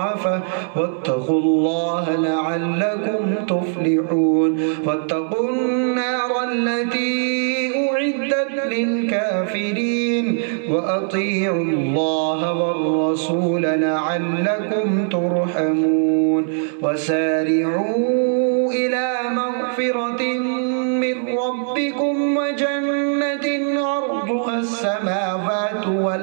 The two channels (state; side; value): silent; left; digital silence